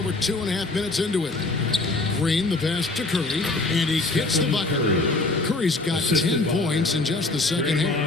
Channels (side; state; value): right; quieter; 3.1 dB